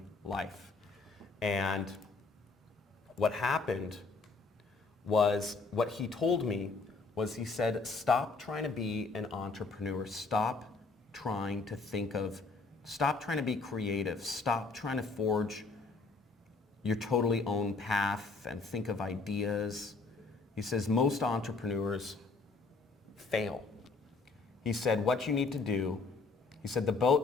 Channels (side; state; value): right; quieter; 4.0 dB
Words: life. And what happened was, what he told me was, he said, stop trying to be an entrepreneur. Stop trying to be creative. Stop trying to forge your totally own path and think of ideas. He says most entrepreneurs fail. He said what you need to do, he said the